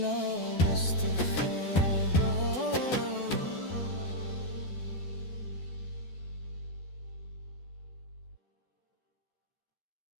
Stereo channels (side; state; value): right; late; 12 ms